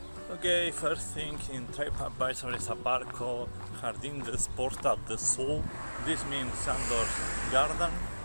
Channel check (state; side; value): inverted; both; correlation -1.00